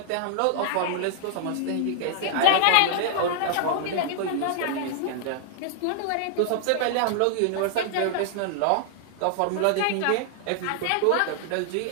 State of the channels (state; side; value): different; both; correlation -0.01